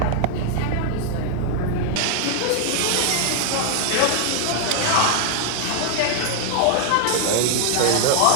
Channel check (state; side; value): different; both; correlation 0.00